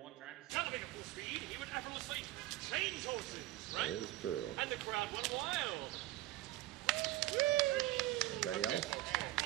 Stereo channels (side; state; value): left; quieter; 17.0 dB